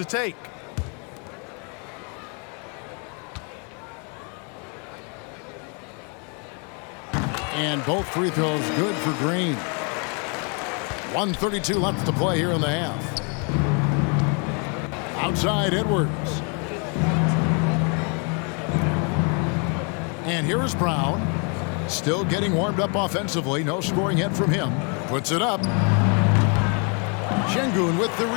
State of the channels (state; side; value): quieter; right; 36.3 dB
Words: take. And both free throws good for Green. 1:32 left to play here in the half. Outside, Edwards. And here is Brown. Still getting warmed up offensively. No scoring yet from him. Puts it up. Şengün with the